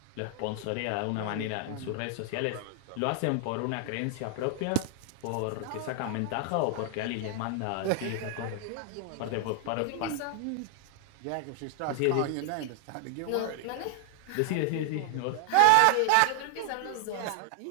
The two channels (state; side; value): different; both; correlation 0.00